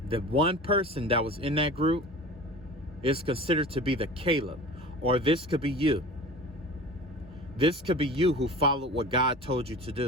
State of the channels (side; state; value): both; normal; correlation 0.37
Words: The one person that was in that group is considered to be the Caleb, or this could be you. This could be you who followed what God told you to